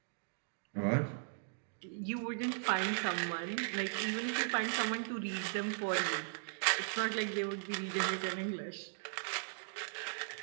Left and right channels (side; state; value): left; silent; digital silence